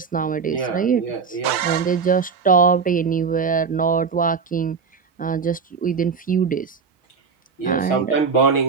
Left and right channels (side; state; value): left; quieter; 5.6 dB